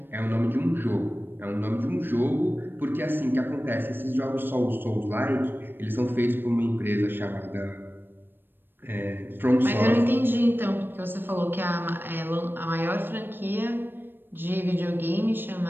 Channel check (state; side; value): late; left; 0.097 ms